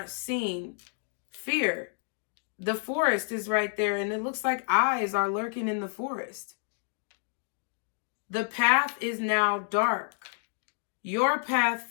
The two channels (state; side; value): silent; right; digital silence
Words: seen, fear. The forest is right there, and it looks like eyes are lurking in the forest. The path is now dark. Your path